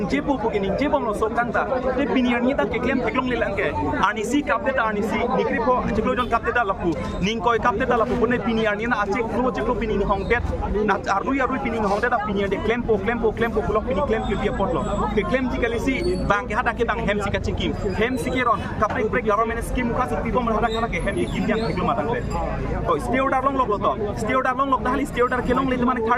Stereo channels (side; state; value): both; identical; correlation 1.00